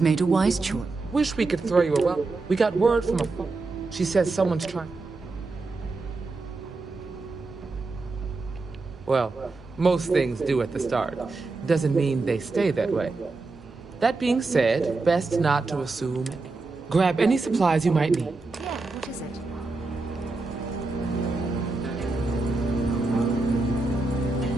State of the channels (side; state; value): left; quieter; 3.6 dB